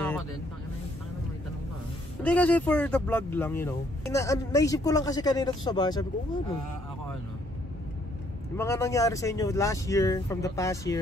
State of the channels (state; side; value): normal; both; correlation 0.67